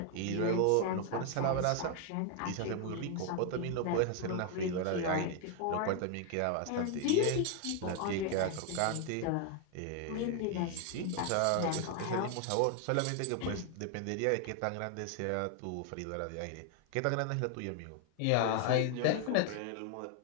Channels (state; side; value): different; both; correlation 0.00